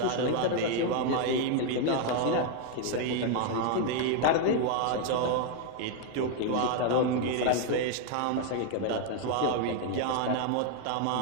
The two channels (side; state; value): both; different; correlation 0.00